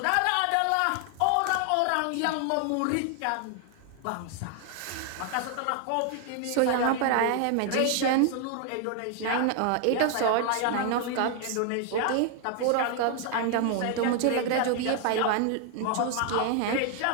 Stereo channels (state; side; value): different; both; correlation 0.00